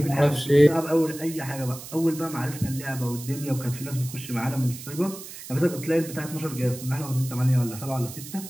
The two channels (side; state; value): right; noise; hiss, 13 dB below the sound